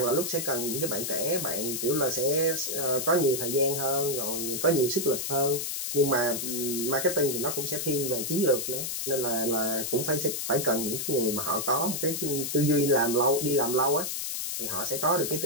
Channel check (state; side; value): noise; left; hiss, 3 dB below the sound